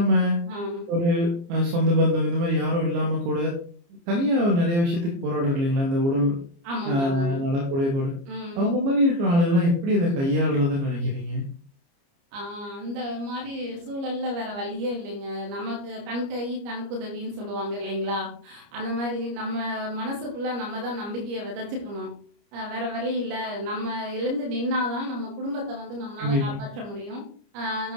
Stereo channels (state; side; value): late; left; 29 ms